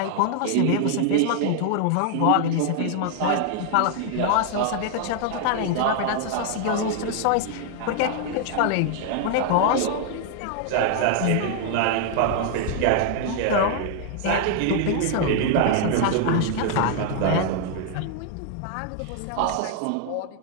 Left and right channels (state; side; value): different; both; correlation 0.00